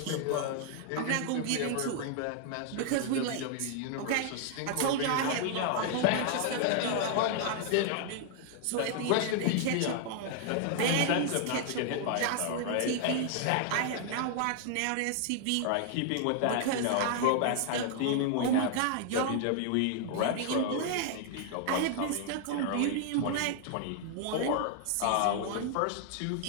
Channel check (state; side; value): different; both; correlation 0.00